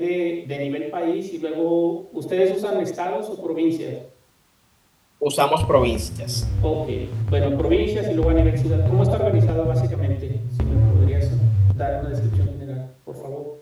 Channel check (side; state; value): both; identical; correlation 1.00